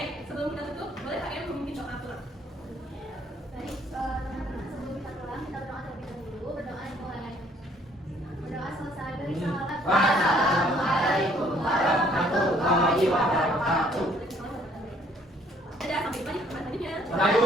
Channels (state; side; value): normal; both; correlation 0.62